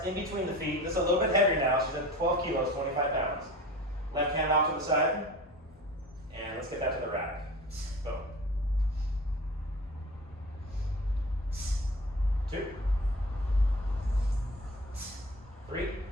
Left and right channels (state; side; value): normal; both; correlation 0.38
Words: in between the feet. This is a little bit heavier now. She's at 12 kilos, 25 pounds. Left hand off to the side. And let's get that to the rack. Boom. 2. 3.